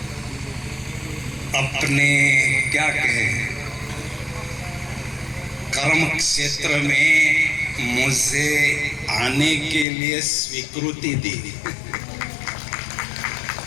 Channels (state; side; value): drops out; right; at 9.9 s